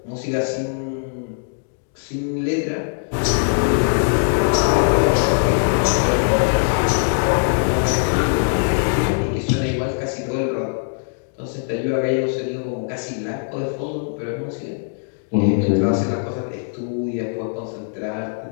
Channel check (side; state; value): right; silent; digital silence